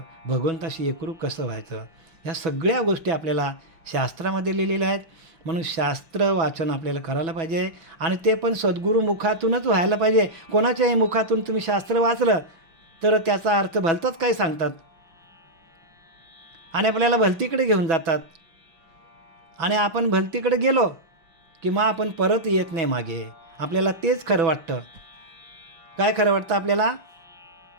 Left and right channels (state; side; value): late; left; 6.1 ms